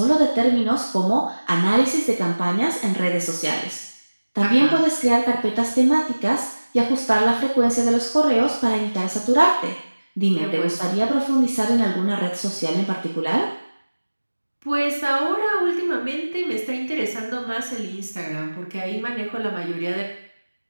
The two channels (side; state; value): both; inverted; correlation -1.00